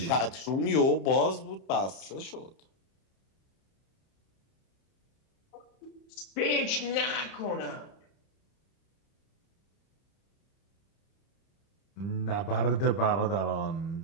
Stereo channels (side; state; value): right; late; 31 ms